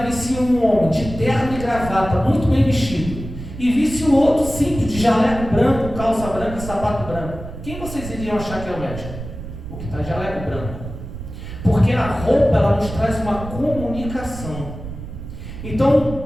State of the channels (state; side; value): noise; right; rumble, 10 dB below the sound